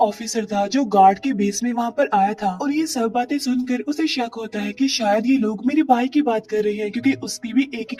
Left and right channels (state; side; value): identical; both; correlation 1.00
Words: ऑफिसर था जो गार्ड के बेस में वहाँ पर आया था, और ये सब बातें सुनकर उसे शक होता है कि शायद ये लोग मेरे भाई की बात कर रहे हैं क्योंकि उसकी भी एक ही